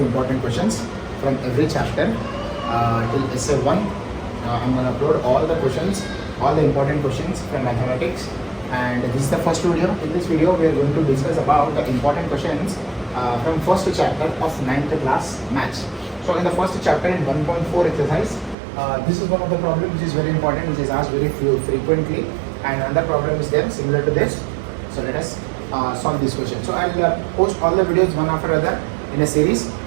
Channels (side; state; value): left; drops out; at 18.6 s